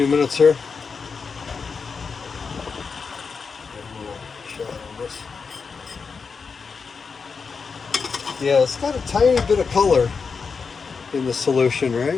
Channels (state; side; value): quieter; right; 5.3 dB